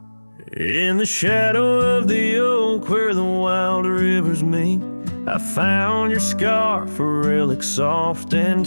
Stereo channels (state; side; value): inverted; both; correlation -1.00